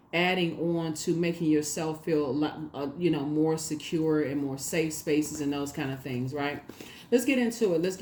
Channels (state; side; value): identical; both; correlation 1.00